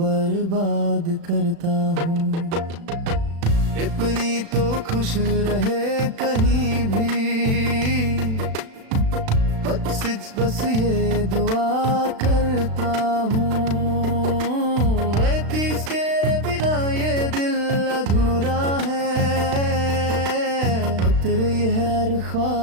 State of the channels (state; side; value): late; left; 36 ms